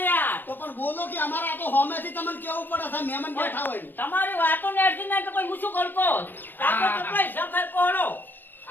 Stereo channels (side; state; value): right; late; 0.093 ms